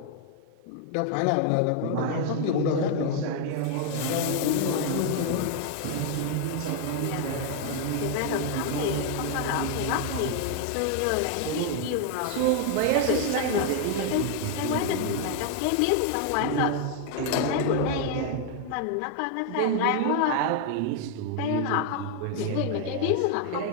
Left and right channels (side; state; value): both; different; correlation 0.00